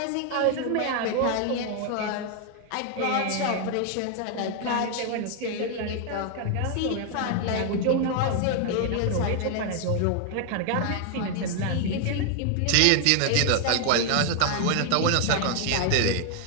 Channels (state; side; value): different; both; correlation 0.00